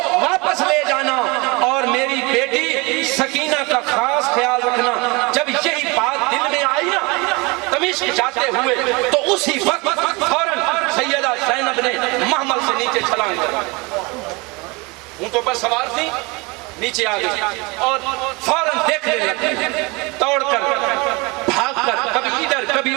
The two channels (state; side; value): quieter; left; 26.6 dB